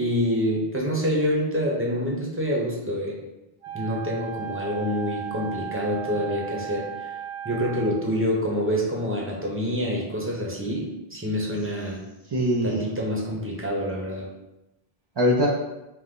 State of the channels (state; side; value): normal; both; correlation 0.02